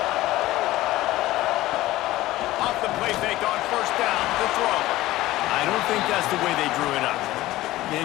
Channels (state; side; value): quieter; right; 16.7 dB